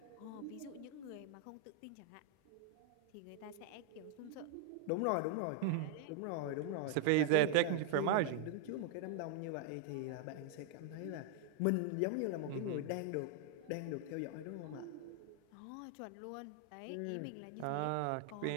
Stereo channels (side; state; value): both; different; correlation 0.00